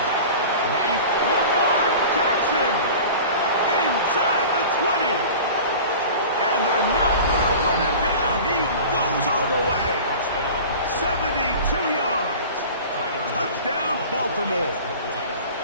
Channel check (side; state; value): both; inverted; correlation -0.38